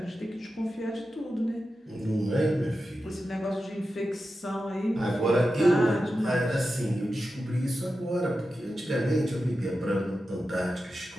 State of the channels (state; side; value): normal; both; correlation 0.91